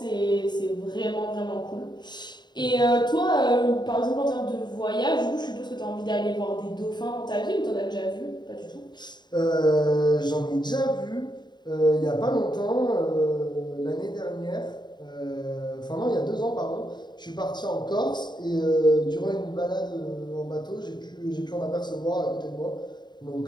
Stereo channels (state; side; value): late; right; 0.21 ms